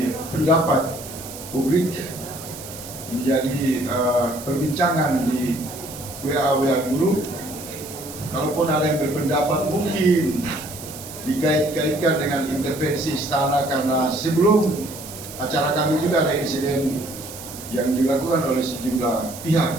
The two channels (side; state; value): right; noise; hiss, 13 dB below the sound